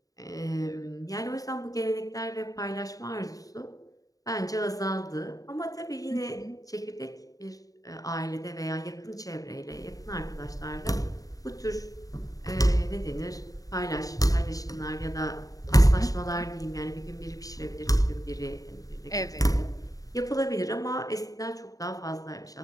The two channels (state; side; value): late; right; 0.17 ms